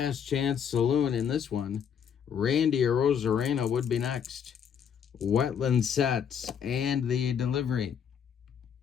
chance saloon in this one. Randy Arozarena would be next. Wetland sets and the delivery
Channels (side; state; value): right; quieter; 7.8 dB